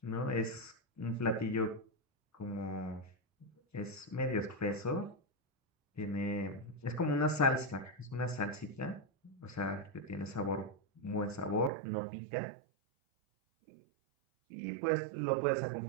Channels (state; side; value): drops out; left; at 11.7 s